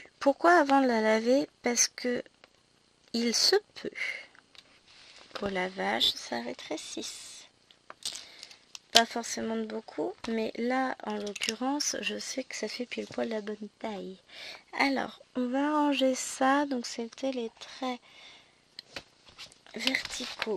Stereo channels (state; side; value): identical; both; correlation 1.00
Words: Pourquoi avant de la laver? Parce que il se peut qu'au lavage ça rétrécisse. Pas forcément de beaucoup, mais là en l'occurrence je sais que ça fait pile poil la bonne taille. Alors on va ranger ça. Donc c'était les traits